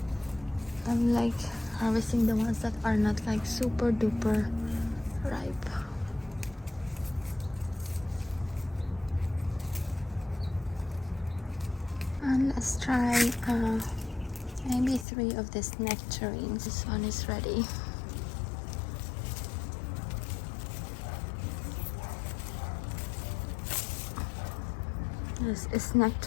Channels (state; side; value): drops out; right; at 15.1 s